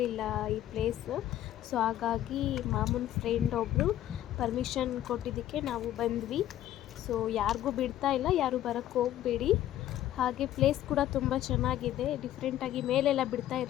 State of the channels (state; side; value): quieter; right; 12.8 dB